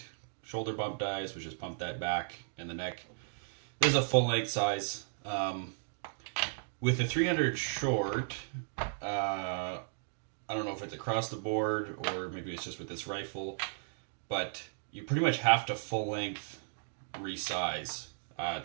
shoulder bump dies, which just pump that back and the neck. This is a full length size. With the 300 short, I don't know if it's across the board or maybe it's just with this rifle, but you pretty much have to full length resize.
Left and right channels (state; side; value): silent; left; digital silence